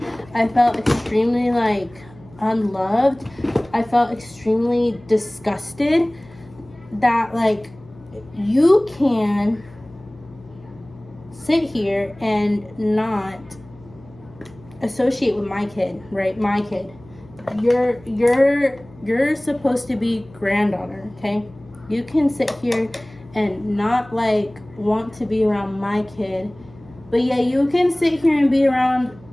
I felt extremely like unloved. I felt extremely disgusted that like you can sit here and not associate with my kid, right? My kid. You're supposed to be granddaughter, okay? You can sit here and not like want to be around my kid, but yeah, you can sit here and be around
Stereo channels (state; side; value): noise; left; hum, 23 dB below the sound